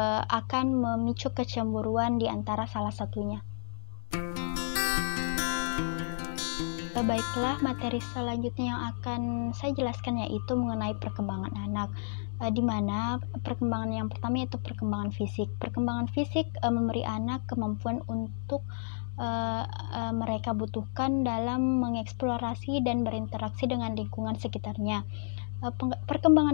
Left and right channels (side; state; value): right; silent; digital silence